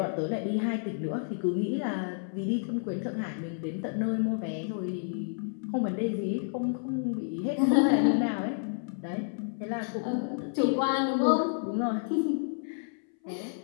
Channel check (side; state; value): right; silent; 58 dB below the other